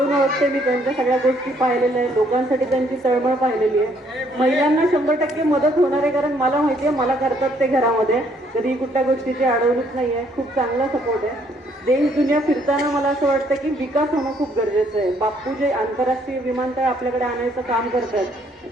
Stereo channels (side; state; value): both; normal; correlation 0.67